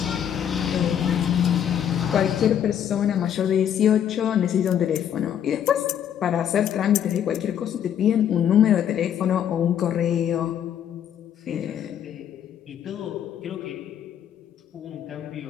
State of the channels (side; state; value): right; quieter; 9.4 dB